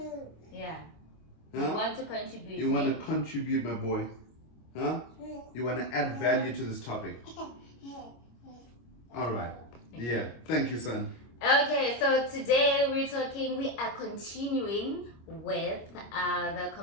Yeah. Huh? You want to contribute. You want to contribute, my boy. Huh? You want to add value to this topic. All right. Yeah. Thank you, son. Okay, so today we are continuing with the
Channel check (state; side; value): late; right; 25 ms